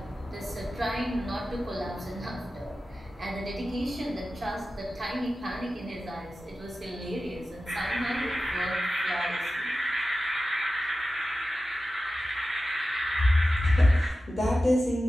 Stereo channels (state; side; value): normal; both; correlation 0.94